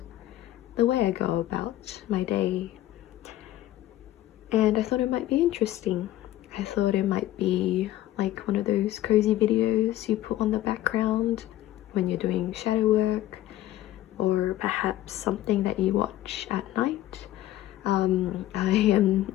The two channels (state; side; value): quieter; right; 14.4 dB